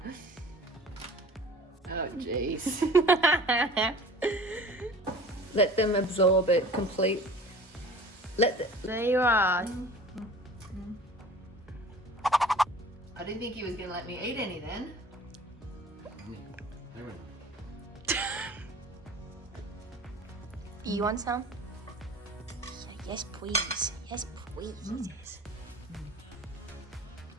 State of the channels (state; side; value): normal; both; correlation 0.43